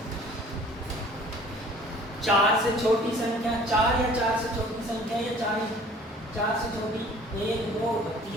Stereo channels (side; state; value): both; normal; correlation 0.51